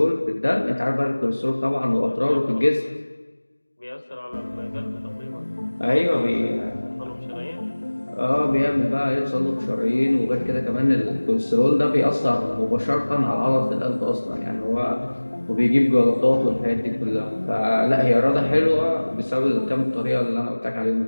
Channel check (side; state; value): both; inverted; correlation -1.00